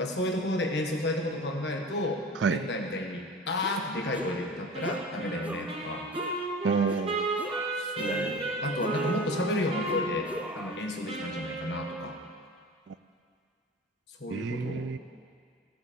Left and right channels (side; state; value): both; normal; correlation 0.36